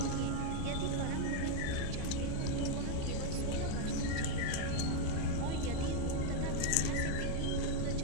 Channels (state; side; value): different; both; correlation 0.00